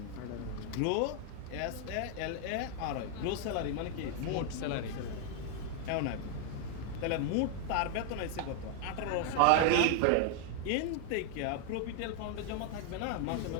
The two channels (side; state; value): both; different; correlation 0.00